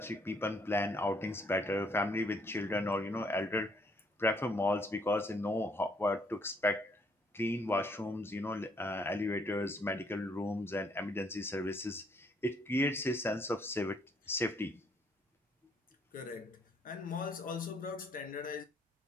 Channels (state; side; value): normal; both; correlation 0.68